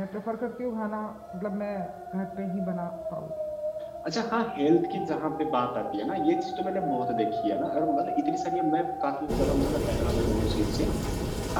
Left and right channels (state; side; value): identical; both; correlation 1.00